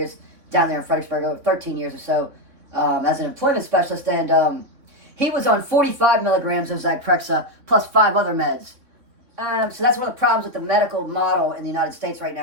down there in Fredericksburg, over 13 years or so, as an employment specialist. And he was on 45 milligrams of Zyprexa plus 5 other meds. So that's one of the problems with the medical model in the United States right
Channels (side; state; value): left; late; 3.5 ms